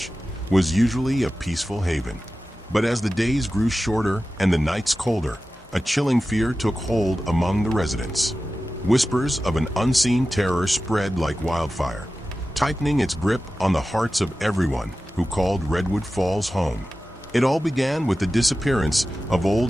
was usually a peaceful haven. But as the days grew shorter and the nights colder, a chilling fear took hold among the residents. Whispers of an unseen terror spread like wildfire, tightening its grip on the hearts of everyone who called Redwood Falls home. It all began with the disappearance of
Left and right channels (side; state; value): both; normal; correlation 0.94